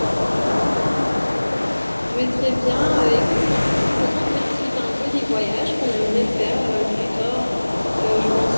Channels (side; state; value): both; inverted; correlation -1.00